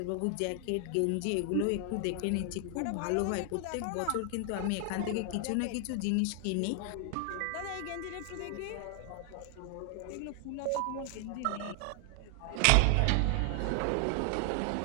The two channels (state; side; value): different; both; correlation 0.00